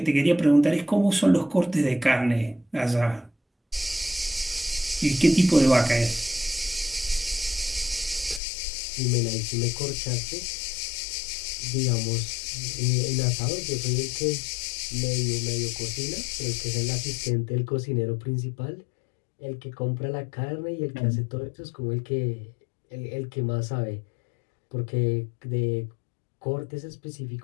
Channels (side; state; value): right; drops out; at 8.4 s